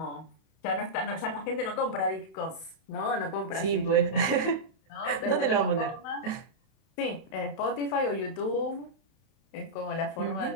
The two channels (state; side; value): late; right; 31 ms